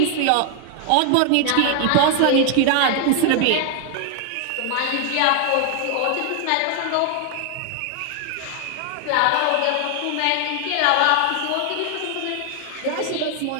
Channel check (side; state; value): both; different; correlation 0.00